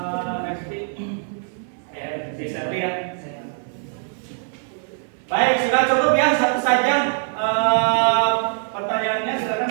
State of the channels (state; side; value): silent; left; digital silence